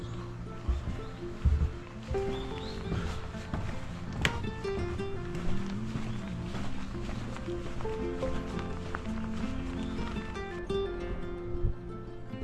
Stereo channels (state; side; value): identical; both; correlation 1.00